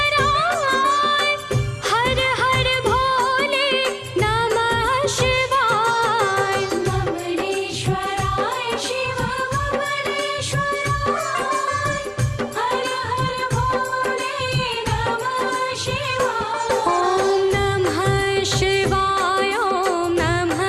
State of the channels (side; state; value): both; identical; correlation 1.00